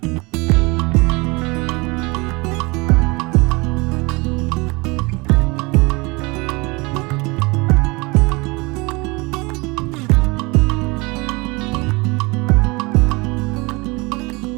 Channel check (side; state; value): left; quieter; 25.7 dB